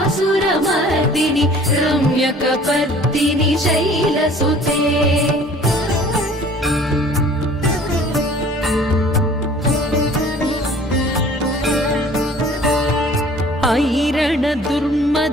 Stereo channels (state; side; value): normal; both; correlation 0.50